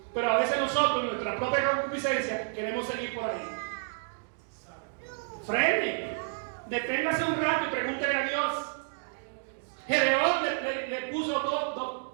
Pero a veces nosotros, nuestra propia concupiscencia, queremos seguir por ahí. Frene, deténgase un rato y pregúntele a Dios. Gedeón le puso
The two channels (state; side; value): silent; left; digital silence